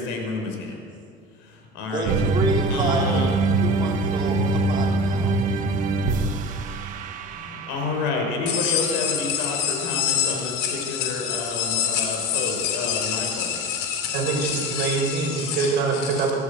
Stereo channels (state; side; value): normal; both; correlation 0.29